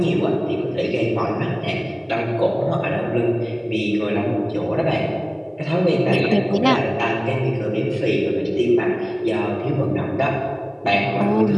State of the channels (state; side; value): identical; both; correlation 1.00